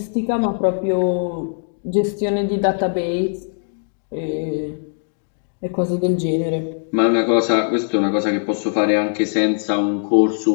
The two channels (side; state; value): right; silent; digital silence